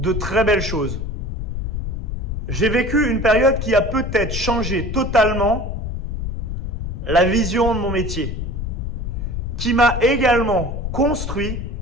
très belles choses. J'ai vécu une période qui a peut-être changé totalement la vision de mon métier, qui m'a également construit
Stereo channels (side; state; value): left; noise; rumble, 3 dB below the sound